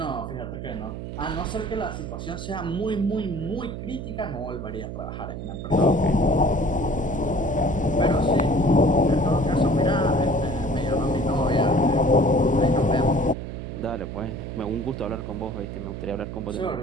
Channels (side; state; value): right; noise; hum, 7 dB below the sound